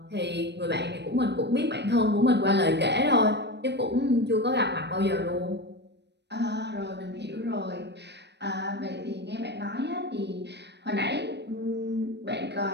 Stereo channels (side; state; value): left; late; 0.50 ms